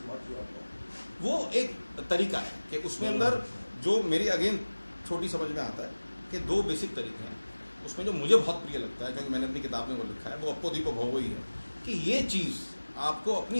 what you are doing. वो एक तरीका है कि उसमें अंदर जो मेरी अगेन छोटी समझ में आता है कि दो बेसिक तरीके हैं। उसमें जो मुझे बहुत प्रिय लगता है, क्योंकि मैंने अपनी किताब में वो लिखा है, वो अपो दीपो भव ही है कि ये चीज़ आपको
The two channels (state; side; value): inverted; both; correlation -1.00